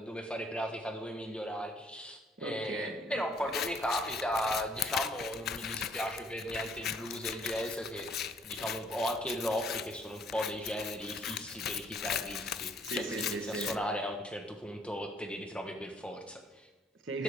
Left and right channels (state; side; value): normal; both; correlation 0.63